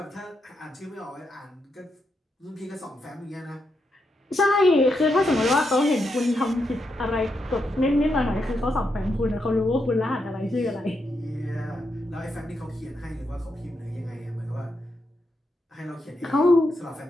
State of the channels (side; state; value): both; normal; correlation 0.83